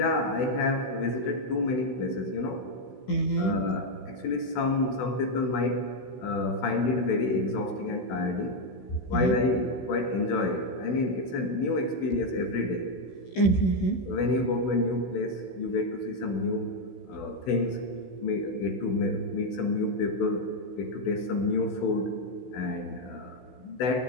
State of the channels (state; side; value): late; right; 16 ms